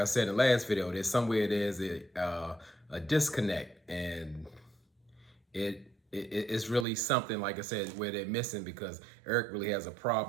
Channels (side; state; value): left; drops out; at 6.9 s